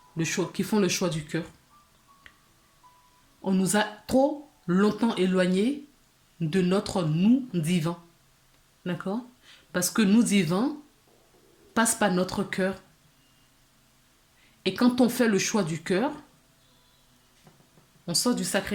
le choix, qui font le choix du cœur. On nous a trop longtemps éloignés de notre nous divin. D'accord? Parce que nous divin passe par notre cœur. Et quand on fait le choix du cœur, on sort du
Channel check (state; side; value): identical; both; correlation 1.00